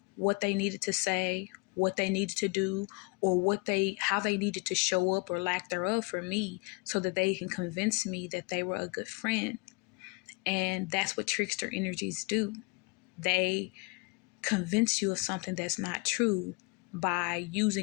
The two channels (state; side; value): quieter; right; 28.6 dB